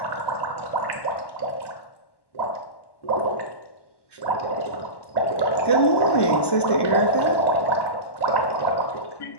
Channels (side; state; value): right; late; 1.1 ms